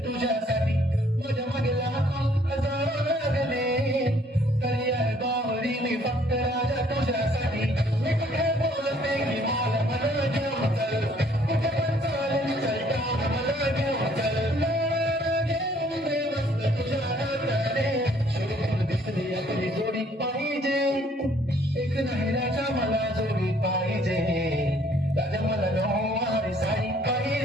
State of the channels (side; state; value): both; normal; correlation 0.62